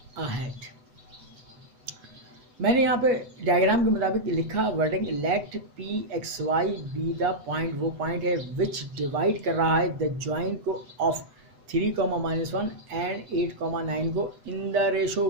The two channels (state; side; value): late; left; 8.0 ms